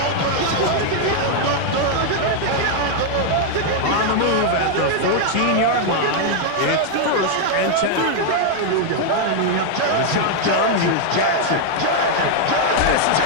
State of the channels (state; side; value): different; both; correlation 0.00